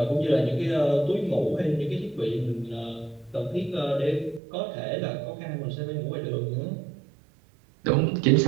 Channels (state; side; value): drops out; left; at 4.4 s